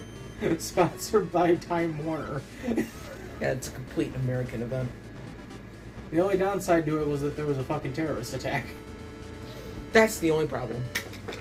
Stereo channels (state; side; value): identical; both; correlation 1.00